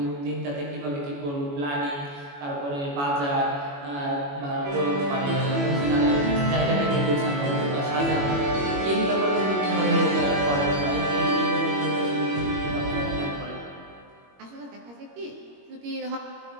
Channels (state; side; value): late; left; 21 ms